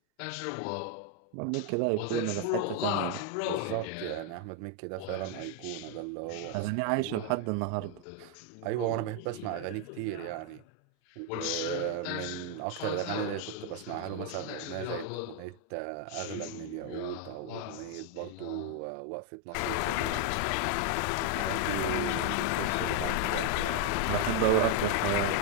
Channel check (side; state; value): both; different; correlation 0.00